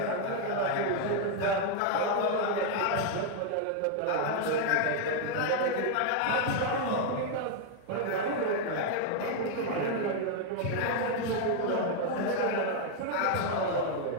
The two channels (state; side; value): different; both; correlation 0.00